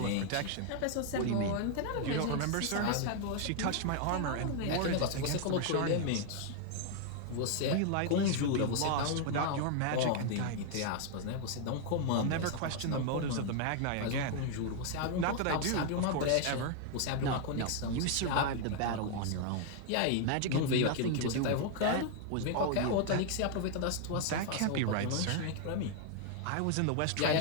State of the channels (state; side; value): different; both; correlation 0.00